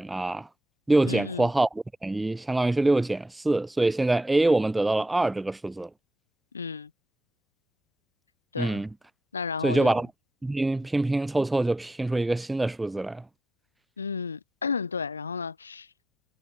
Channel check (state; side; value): normal; both; correlation 0.87